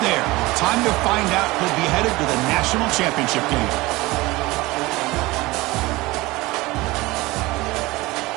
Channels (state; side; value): quieter; left; 20.8 dB